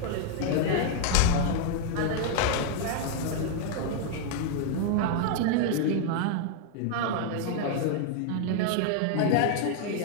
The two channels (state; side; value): different; both; correlation 0.00